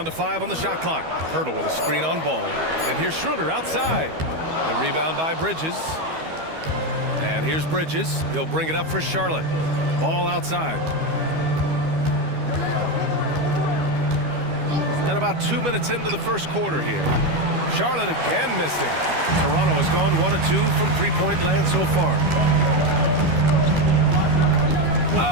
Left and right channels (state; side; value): late; left; 12 ms